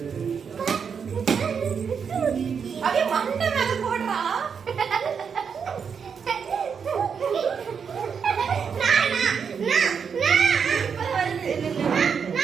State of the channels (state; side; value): quieter; left; 6.5 dB